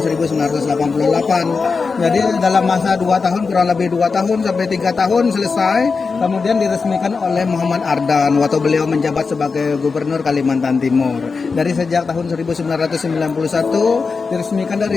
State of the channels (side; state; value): right; quieter; 4.7 dB